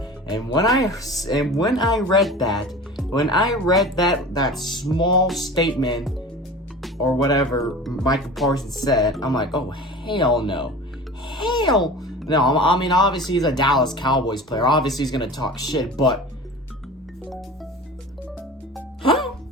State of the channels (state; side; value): normal; both; correlation 0.36